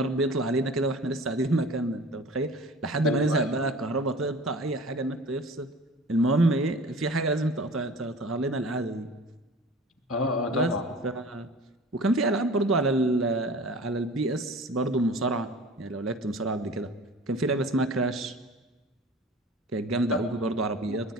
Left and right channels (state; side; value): normal; both; correlation 0.41